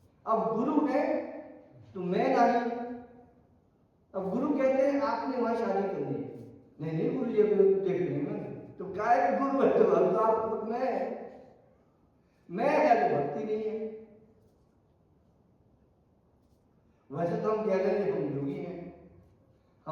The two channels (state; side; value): identical; both; correlation 1.00